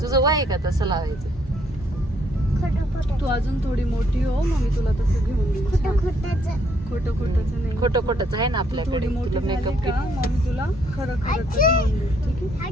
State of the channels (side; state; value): both; normal; correlation 0.69